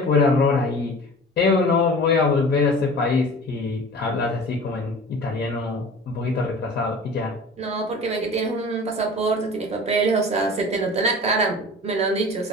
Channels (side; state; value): both; normal; correlation 0.40